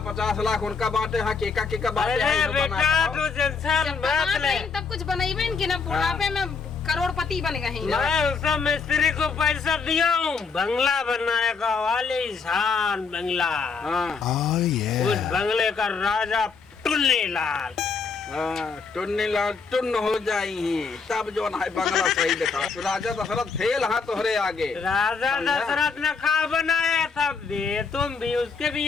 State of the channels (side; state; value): right; quieter; 5.1 dB